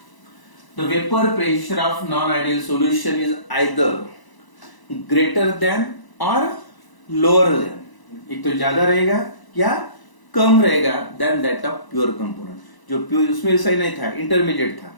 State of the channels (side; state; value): right; late; 1.0 ms